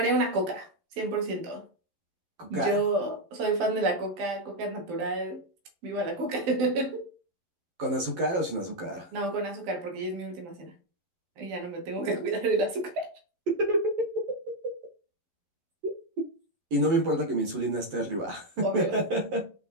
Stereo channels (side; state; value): left; late; 11 ms